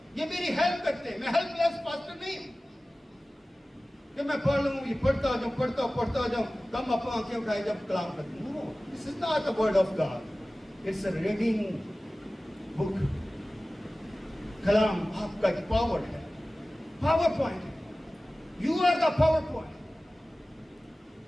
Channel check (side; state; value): both; normal; correlation 0.97